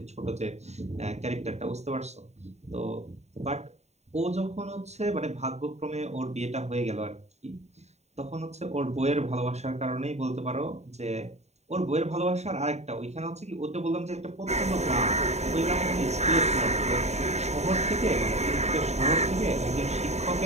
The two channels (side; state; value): left; late; 0.32 ms